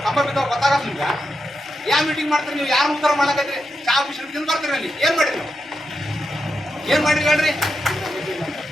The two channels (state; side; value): normal; both; correlation 0.86